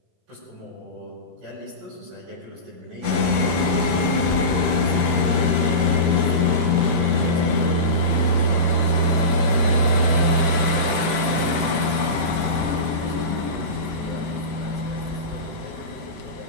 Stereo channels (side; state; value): left; late; 18 ms